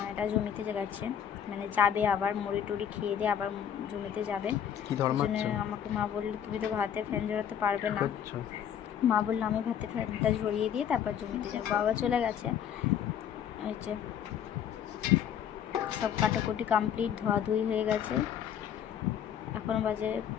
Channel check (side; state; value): right; quieter; 9.0 dB